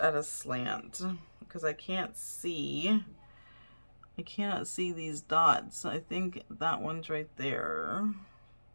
a slant? Because I cannot see these dots. I think that one's right there.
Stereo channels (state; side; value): inverted; both; correlation -1.00